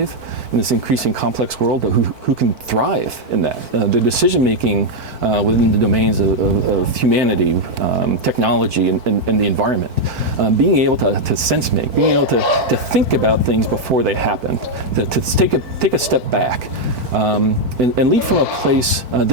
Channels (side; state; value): left; late; 4.5 ms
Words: in this increasing complex world, but who can thrive in that. The decision-making within the domains of humanity, technology, and the environment. Being able to sense-make, being able to think about things before they happen, to take a step back, and lead from a place